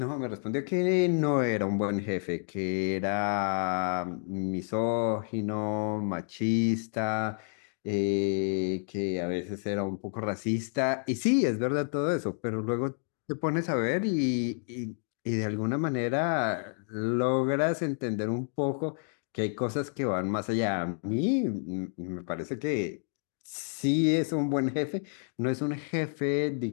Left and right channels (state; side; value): silent; right; 58 dB below the other